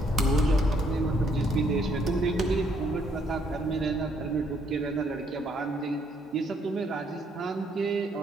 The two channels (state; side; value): normal; both; correlation 0.69